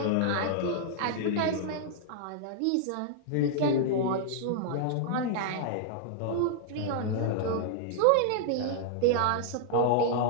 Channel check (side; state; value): both; different; correlation -0.01